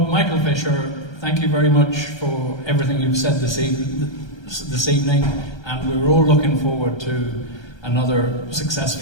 Michael Fisher, thank you very much for everything you've said this evening, and we're all looking forward to another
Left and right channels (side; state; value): right; late; 1.3 ms